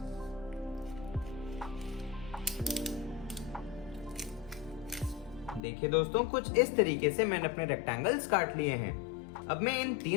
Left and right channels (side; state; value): right; drops out; at 5.6 s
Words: देखिए दोस्तों, कुछ इस तरीके से मैंने अपने रेक्टेंगल्स काट लिए हैं। अब मैं इन